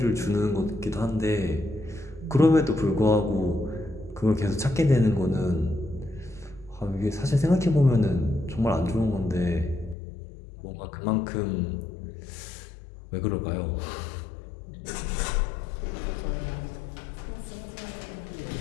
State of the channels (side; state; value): right; drops out; at 10.0 s